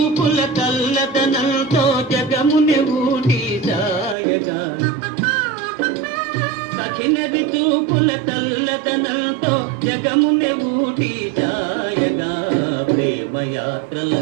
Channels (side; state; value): left; drops out; at 4.2 s